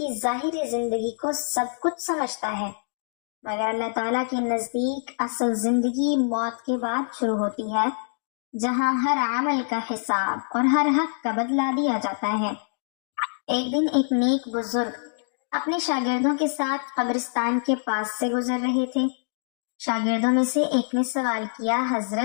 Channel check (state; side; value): silent; right; digital silence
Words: ظاہری زندگی کو سب کچھ سمجھتا ہے، مگر اللہ تعالیٰ کے نزدیک اصل زندگی موت کے بعد شروع ہوتی ہے، جہاں ہر عمل کا حساب اور ہر حق کا بدلہ دیا جاتا ہے۔ ایک دن ایک نیک بزرگ اپنے شاگردوں کے ساتھ قبرستان کے پاس سے گزر رہے تھے۔ شاگردوں میں سے ایک نے سوال کیا،